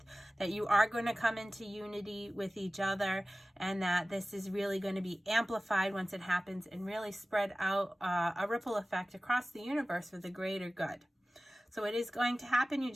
that you are going to come into unity with each other, and that this is really going to be amplified once it happens and really spread out a ripple effect across the universe for the greater good. So it is going to happen. You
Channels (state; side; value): normal; both; correlation 0.97